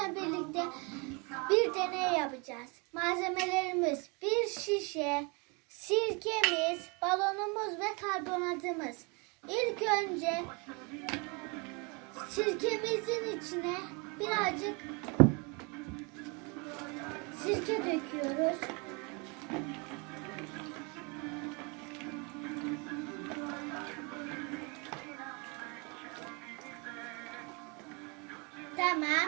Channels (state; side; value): quieter; left; 31.1 dB